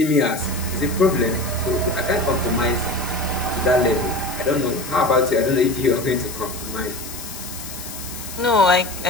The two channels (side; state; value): left; noise; hiss, 11 dB below the sound